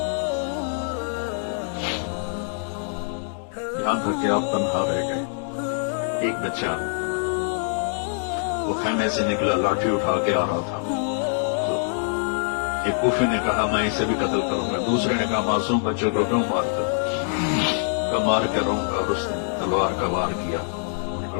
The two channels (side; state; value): right; silent; digital silence